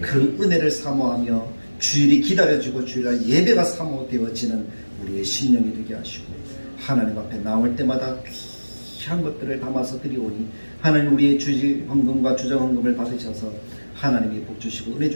그 은혜를 사모하며 주일이 기다려지고 주일날 예배가 사모되어지는 우리의 심령이 되게 하시고 하나님 앞에 나올 때마다 귀한 것들을 담아서 드리오니 하나님 우리의 주지 헌금과 주정 헌금을 받으셔서 하나님이 복 주시고 은혜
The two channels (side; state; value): both; inverted; correlation -1.00